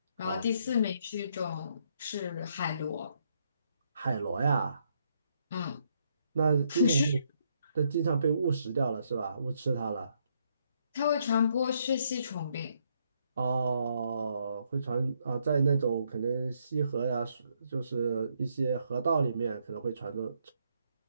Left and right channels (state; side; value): inverted; both; correlation -0.74